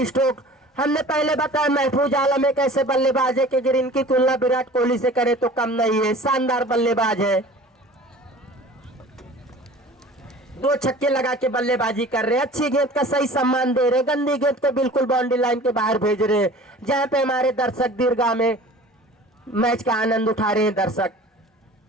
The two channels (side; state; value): both; normal; correlation 0.43